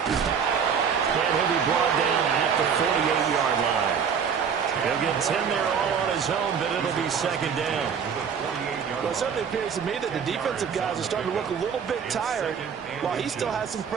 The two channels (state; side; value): quieter; left; 6.9 dB